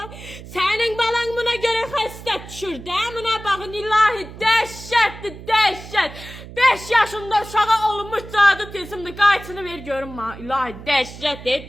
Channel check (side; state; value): right; noise; hum, 15 dB below the sound